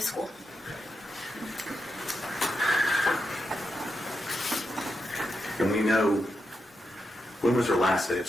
school. And we know, when was her last day of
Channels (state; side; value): normal; both; correlation 0.86